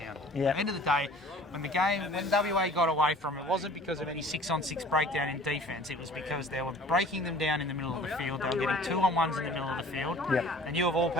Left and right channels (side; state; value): both; normal; correlation 0.48